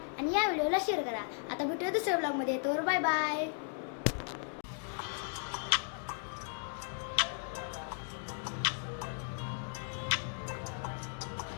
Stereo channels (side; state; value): right; silent; 54 dB below the other